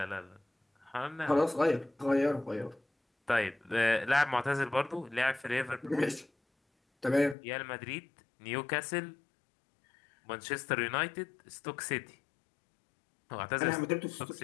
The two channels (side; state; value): right; drops out; at 7.4 s